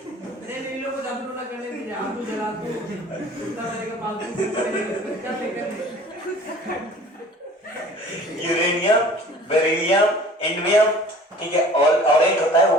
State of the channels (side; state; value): both; normal; correlation 0.47